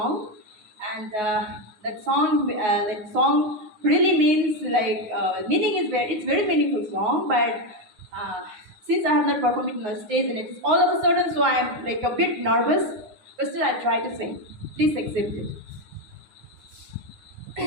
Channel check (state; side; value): late; left; 9.5 ms